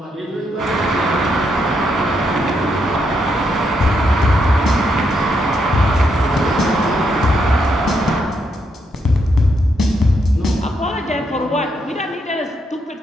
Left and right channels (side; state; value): both; normal; correlation 0.78